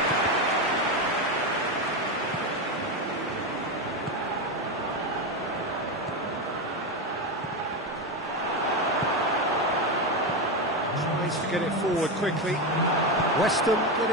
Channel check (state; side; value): normal; both; correlation 0.13